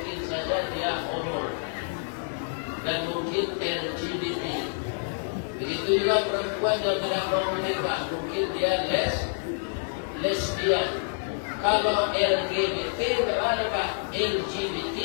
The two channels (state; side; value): silent; right; digital silence